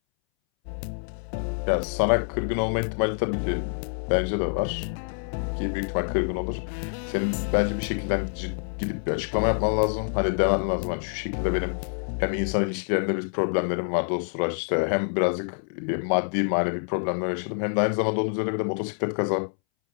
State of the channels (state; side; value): silent; right; 61 dB below the other